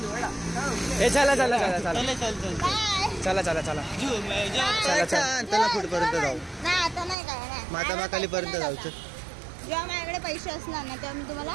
हे चला बाय. त्याला कुठपर्यंत जाऊ? नाही आता नाही काय नाही. मातामाकाली पर्यंत जायचं. जेव्हा माझ्याकडे पैसे असणार ना तेव्हा मी तुम्हाला.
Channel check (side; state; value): left; drops out; at 7.2 s